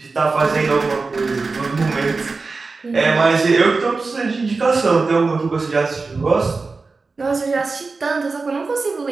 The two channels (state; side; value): quieter; left; 4.0 dB